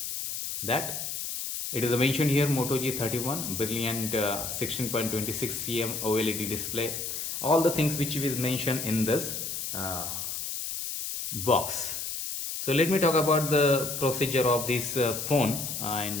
that it is mentioned here Moto G31 brilliant 16.26 cm OLED display. All the things which is mentioned in this box. So let me talk about the procedure of this phone,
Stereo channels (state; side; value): noise; left; hiss, 4 dB below the sound